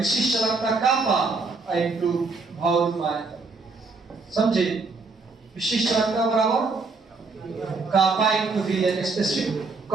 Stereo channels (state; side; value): quieter; left; 4.1 dB